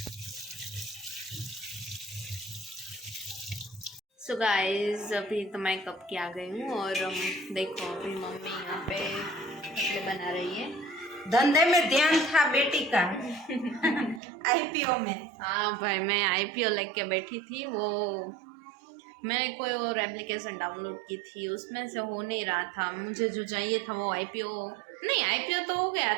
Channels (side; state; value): left; drops out; at 14.2 s